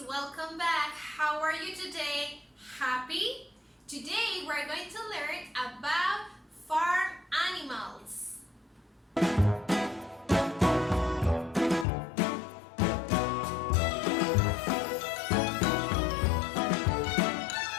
welcome back. How are you today? Happy? Today we're going to learn about farm animals.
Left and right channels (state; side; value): drops out; right; at 11.9 s